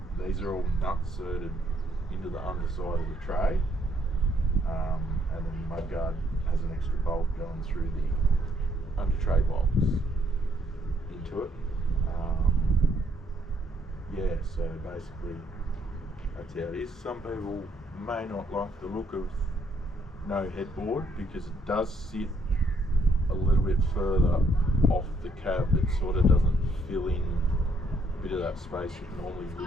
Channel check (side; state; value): both; normal; correlation 0.70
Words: These are all nut inserted into the underside of the tray, and then the mud guard has an extra bolt going through the under tray box into it. Yeah, so basically that's how it is. Some people may not like the look of no headboard because it does sit a little bit further off the cab. It sort of doesn't fill in a bit of that space that normally